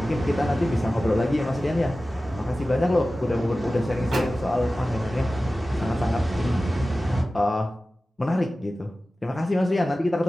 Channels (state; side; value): normal; both; correlation 0.95